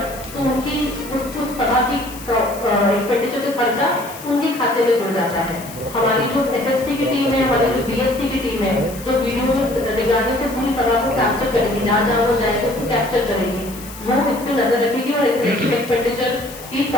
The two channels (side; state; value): left; noise; hiss, 16 dB below the sound